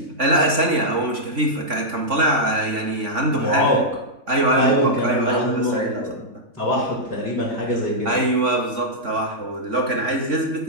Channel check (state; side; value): late; left; 3.5 ms